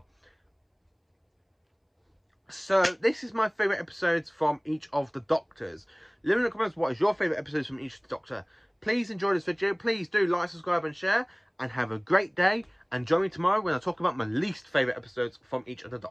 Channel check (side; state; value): both; identical; correlation 1.00